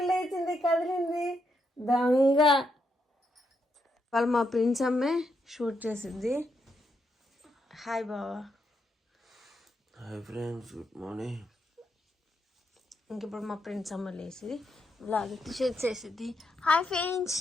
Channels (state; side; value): normal; both; correlation 0.80